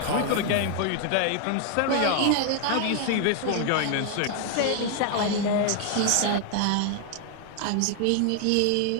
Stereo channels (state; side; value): different; both; correlation 0.00